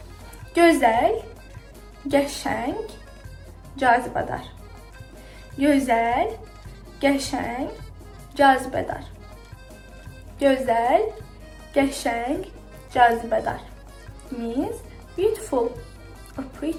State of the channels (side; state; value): both; identical; correlation 1.00